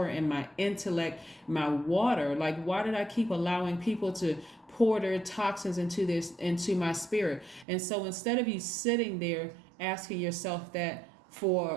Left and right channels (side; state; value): left; drops out; at 7.7 s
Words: and my intellect, my water? Like, why did I keep allowing people to pour their toxins into my spirit? And so instead of you sitting there asking yourself that for